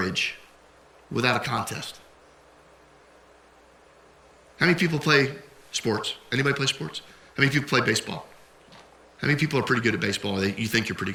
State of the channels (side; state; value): both; identical; correlation 1.00